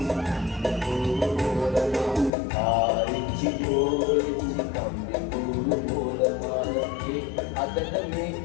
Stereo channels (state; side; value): drops out; right; at 2.3 s